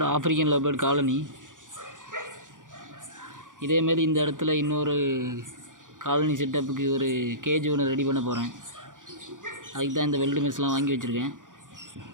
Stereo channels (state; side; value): late; left; 0.88 ms